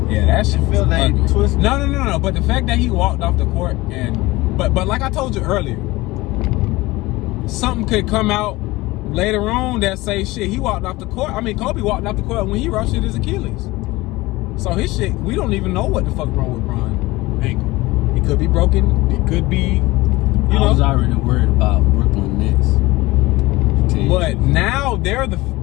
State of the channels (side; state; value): right; quieter; 20.3 dB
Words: Yeah, that shit feel that twisted. No. But the fact that he walked off the court and but like I told you earlier, something could come out later on that say shit. He walked off the court. I mean, Kobe walked off the court when he ruptured his Achilles. So his shit, we don't even know what the fuck wrong with Bron's ankle. It could be broken. It could be, I was already worried about Brooklyn Nets. But now they're the